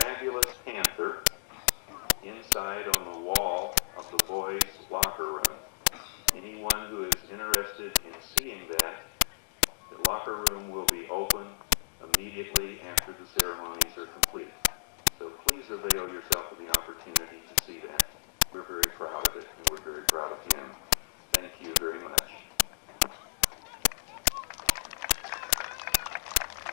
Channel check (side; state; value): right; silent; digital silence